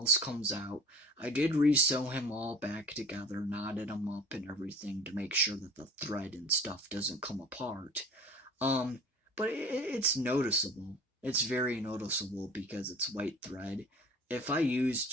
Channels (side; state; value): both; normal; correlation 0.44